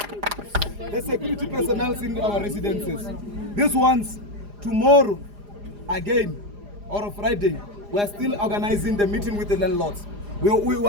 The security personnel in our residences. These ones, tomorrow, again, or Friday, we are still organizing the meeting with the landlords. We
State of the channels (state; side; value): late; left; 4.9 ms